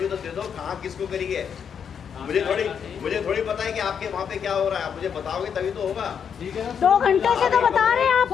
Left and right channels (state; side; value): quieter; right; 7.4 dB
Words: तो दे दो, कहाँ किसको करी है। मुझे थोड़ी पता है कि आपके वहाँ पे क्या हो रहा है, आप मुझे बताओगे तभी तो होगा। 2 घंटे से तो बता रहे हैं